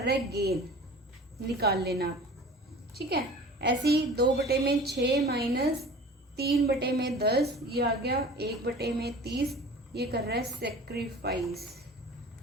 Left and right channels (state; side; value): normal; both; correlation 0.41